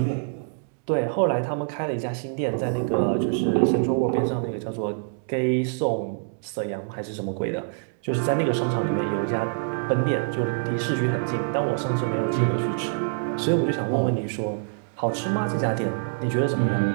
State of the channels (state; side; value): silent; left; 61 dB below the other